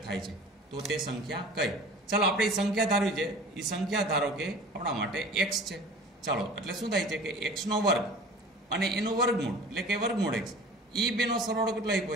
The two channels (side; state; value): both; normal; correlation 0.43